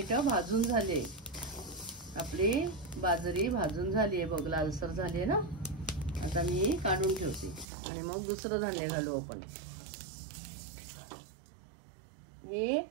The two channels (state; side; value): drops out; left; at 7.7 s